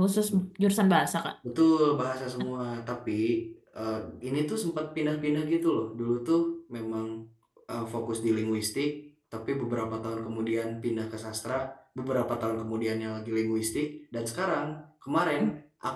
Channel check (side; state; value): both; identical; correlation 1.00